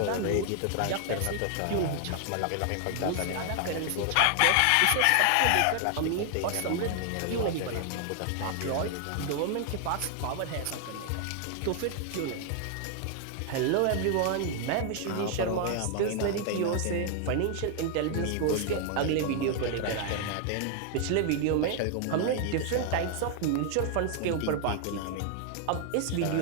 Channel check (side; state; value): both; different; correlation 0.00